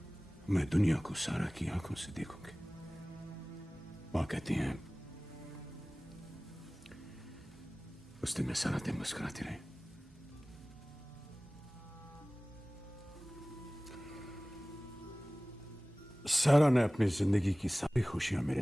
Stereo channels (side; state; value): both; normal; correlation 0.98